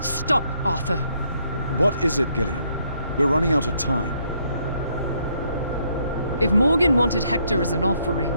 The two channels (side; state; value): both; inverted; correlation -0.72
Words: Arthur. What is it, Gillian? We're running out of time. If Morgan wanted Hector as an offering,